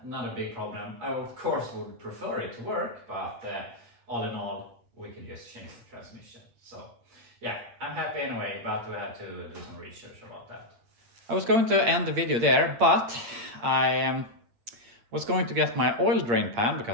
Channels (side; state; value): left; late; 8.7 ms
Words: not a big problem. I of course would prefer it to work, but all in all, we could just change the transmission. So yeah, I'm happy anyway, but we had to do some research about that. I was going to end the video there, but I was going to get my oil drain pan,